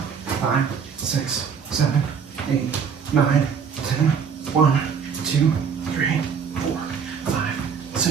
5, 6, 7, 8, 9, 10. 1, 2, 3, 4, 5,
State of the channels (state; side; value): quieter; left; 6.6 dB